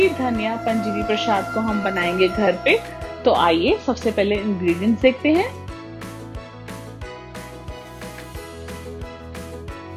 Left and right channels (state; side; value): identical; both; correlation 1.00